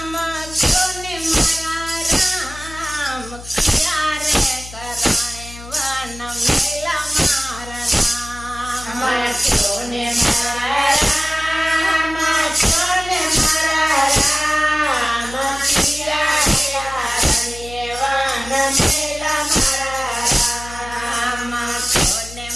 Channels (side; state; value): left; noise; hum, 15 dB below the sound